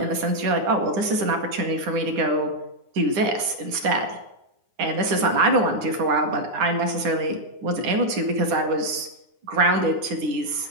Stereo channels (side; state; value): left; late; 9.7 ms